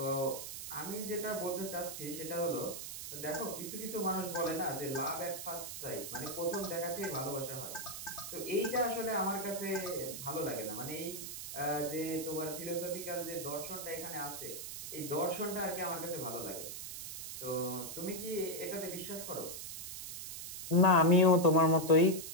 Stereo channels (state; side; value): noise; right; hiss, 8 dB below the sound